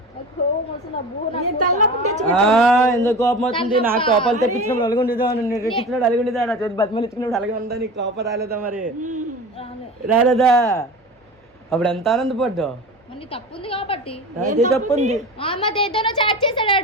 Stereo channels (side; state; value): both; normal; correlation 0.33